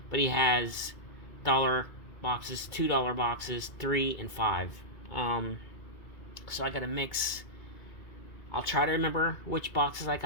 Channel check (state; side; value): late; right; 2.2 ms